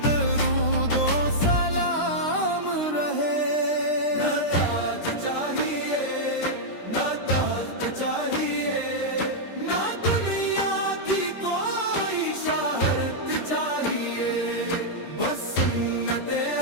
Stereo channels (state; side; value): late; right; 13 ms